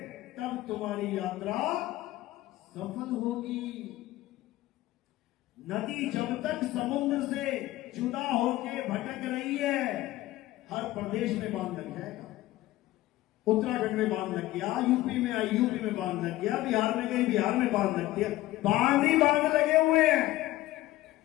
तब तुम्हारी यात्रा सफल होगी। नदी जब तक समुद्र से जुदा होके भटक रही है, हर प्रदेश में बांध लग जाएगा। उत्तराखंड में बांध लग गया, यूपी में आई, यूपी में बांध लग गया, बिहार में गई, बिहार में बांध लग गया। बांध ही बांध लगे हुए हैं।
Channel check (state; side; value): quieter; right; 16.6 dB